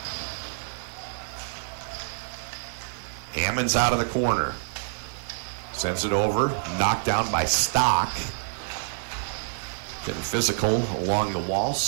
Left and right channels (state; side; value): silent; left; digital silence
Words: Hammond's out of the corner. Sends it over, knocked down by Stock. Getting physical along the wall.